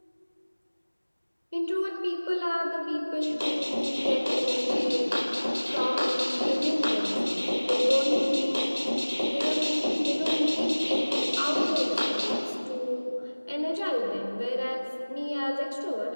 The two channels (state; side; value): inverted; both; correlation -1.00